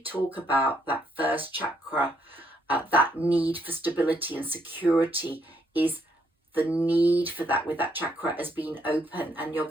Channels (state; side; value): normal; both; correlation 0.72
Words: about? That first chakra, that need for stability and security, is the need for that with that chakra has been open, and you're